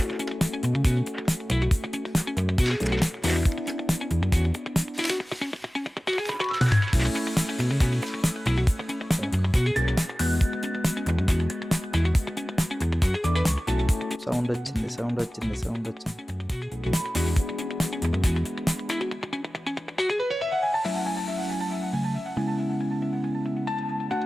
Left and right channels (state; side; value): normal; both; correlation 0.96